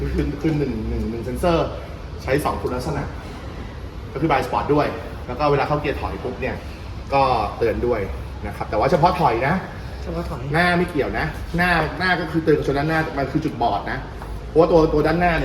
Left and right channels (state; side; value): identical; both; correlation 1.00